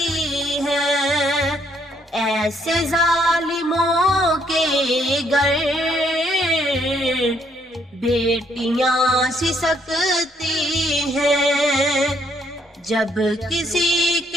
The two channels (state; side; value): normal; both; correlation 0.70